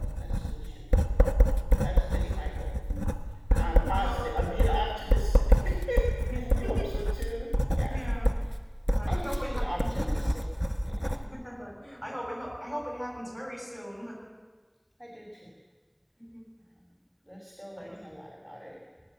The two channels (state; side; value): identical; both; correlation 1.00